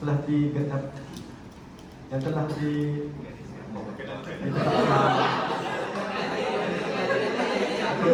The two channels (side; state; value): both; identical; correlation 1.00